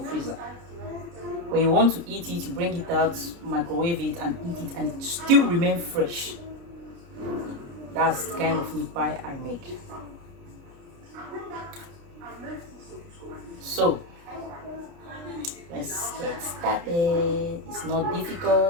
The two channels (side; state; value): left; late; 29 ms